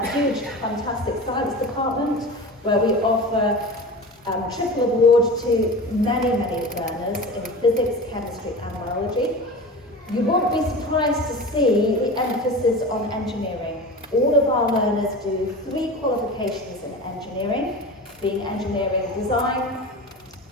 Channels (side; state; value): both; normal; correlation 0.32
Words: huge, fantastic science department where we offer triple award to many learners in physics, chemistry and biology. You won't be surprised to see the emphasis on engineering. All of our learners do 3 qualifications in engineering, being engineering design,